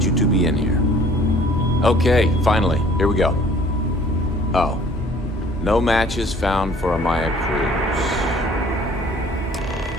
you to be in here. Okay, finally. Here we go. Oh. No matches found for a Maya Cruz.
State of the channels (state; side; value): normal; both; correlation 0.54